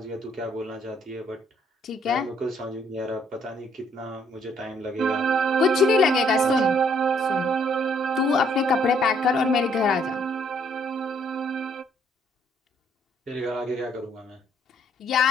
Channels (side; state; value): both; normal; correlation 0.66